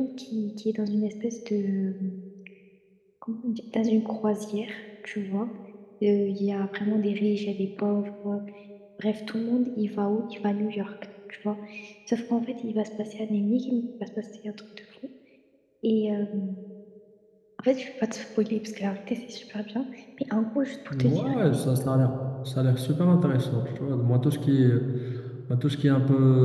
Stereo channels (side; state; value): both; identical; correlation 1.00